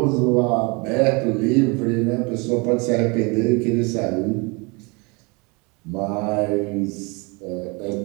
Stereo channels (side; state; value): left; quieter; 29.0 dB